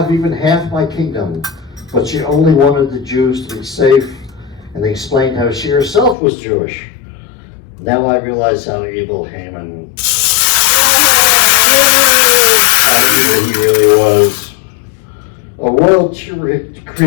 even half my kingdom, but she only wanted the Jews to be safe, and they explained how she herself was Jewish. Now I realize how evil Haman, how evil he really was. A royal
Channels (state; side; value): drops out; right; at 6.2 s